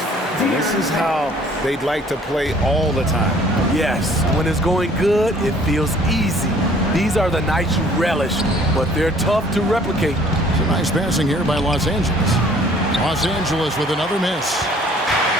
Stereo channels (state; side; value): normal; both; correlation 0.56